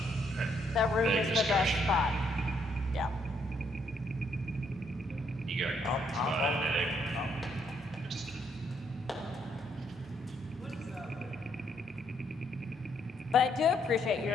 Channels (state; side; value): normal; both; correlation 0.72